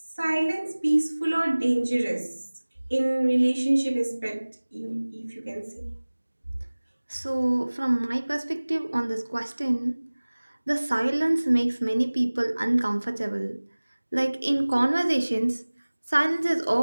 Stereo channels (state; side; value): inverted; both; correlation -1.00